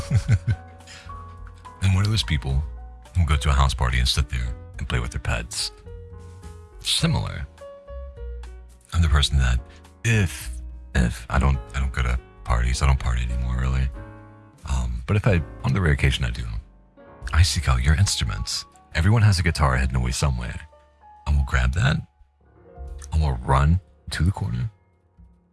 And one of those people who go to a house party and sit there and play with their pets. Similar. I'm the person that if I don't go to parties, I don't party anymore really. But if on the rare occasion I do, I seek out your instruments. Everyone has a guitar hidden away somewhere. I will grab that. I will run to the corner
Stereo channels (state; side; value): identical; both; correlation 1.00